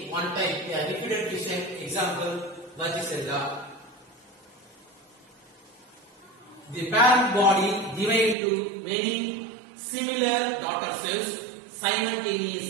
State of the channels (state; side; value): drops out; left; at 8.3 s